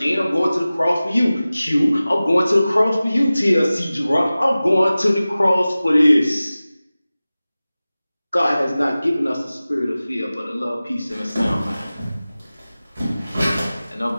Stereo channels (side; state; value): both; inverted; correlation -0.97